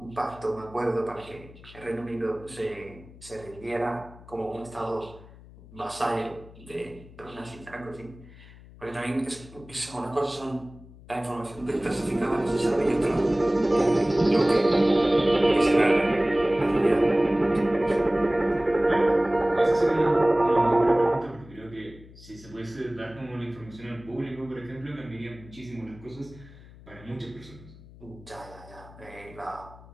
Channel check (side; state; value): left; noise; hum, 20 dB below the sound